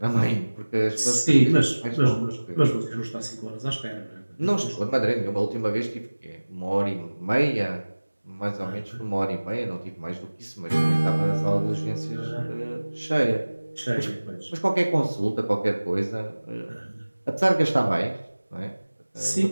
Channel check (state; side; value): inverted; both; correlation -1.00